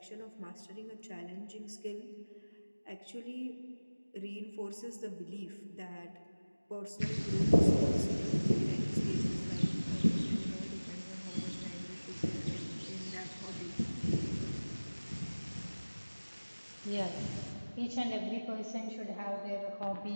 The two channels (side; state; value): both; inverted; correlation -1.00